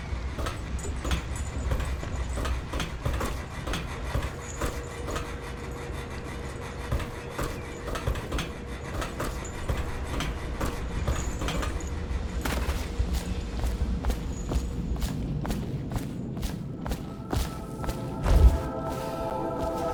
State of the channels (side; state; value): both; identical; correlation 1.00